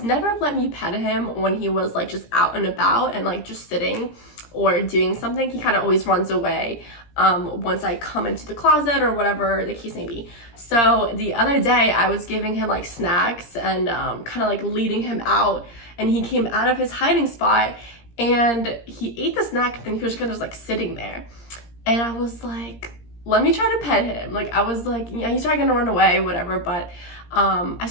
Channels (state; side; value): late; right; 17 ms